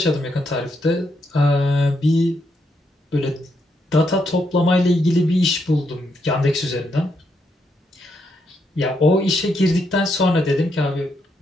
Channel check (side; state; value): both; normal; correlation 0.78